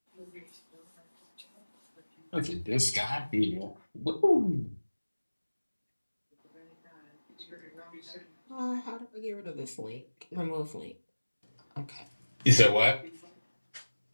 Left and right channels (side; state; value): both; inverted; correlation -1.00